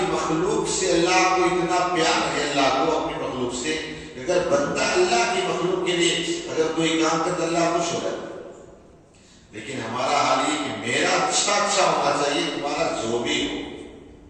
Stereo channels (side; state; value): both; identical; correlation 1.00